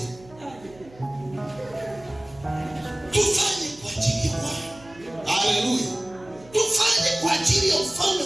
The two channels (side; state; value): right; noise; hum, 24 dB below the sound